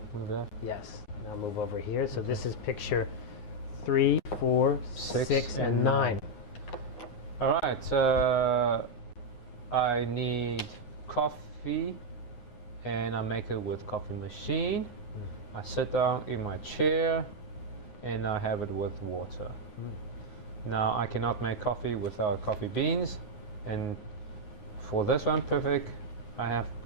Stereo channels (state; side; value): late; right; 9.6 ms